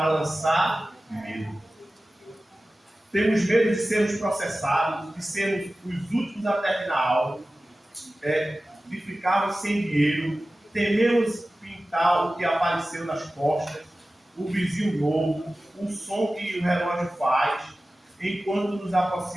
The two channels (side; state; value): both; normal; correlation 0.96